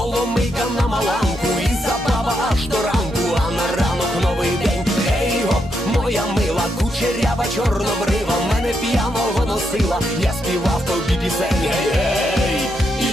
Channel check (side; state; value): both; normal; correlation 0.81